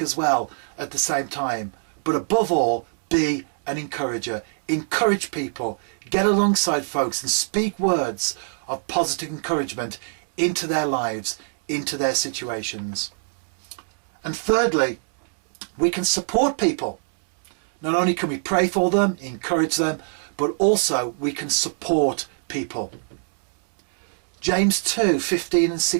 as well at the same time. But above all, be an encourager. Encourage people. Get alongside folks and speak words of positive encouragement into their lives, into their situations. And thirdly, we can support people. Not only can we pray for them, encourage them, but also we can support people. James 2:15 and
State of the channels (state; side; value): silent; left; 63 dB below the other